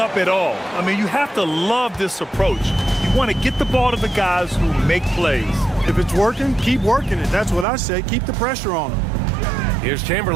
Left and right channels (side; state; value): left; drops out; at 7.7 s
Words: at all. I mean, you have to love this approach. You want to get the ball to the guys who make plays. If it's working, keep working it. That's what I say. Keep the pressure on them. Here's